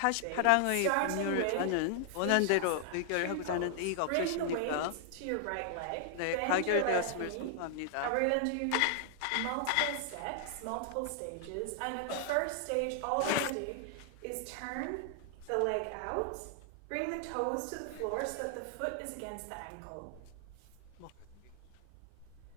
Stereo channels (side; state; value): both; different; correlation 0.00